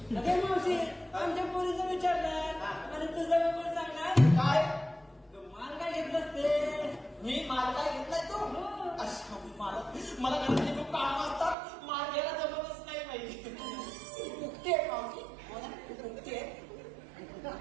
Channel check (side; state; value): left; drops out; at 11.6 s